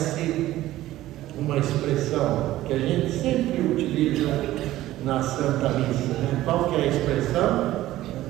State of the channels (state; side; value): quieter; left; 15.2 dB